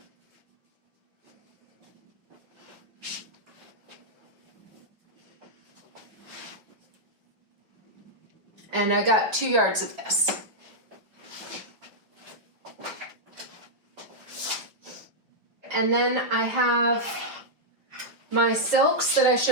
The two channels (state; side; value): late; left; 5.6 ms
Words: And I got 2 yards of this. And then I have my silks that I